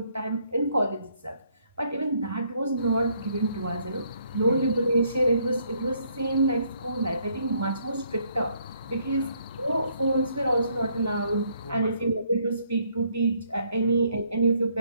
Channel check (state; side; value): inverted; both; correlation -0.68